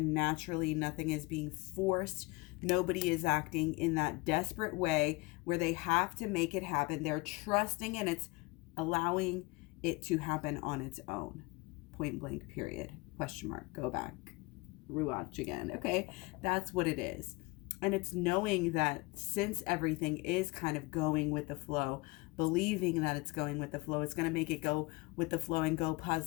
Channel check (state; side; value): quieter; right; 25.1 dB